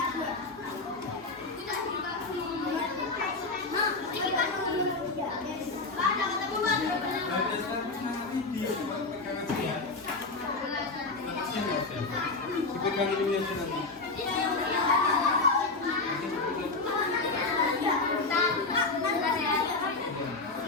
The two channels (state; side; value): quieter; right; 3.6 dB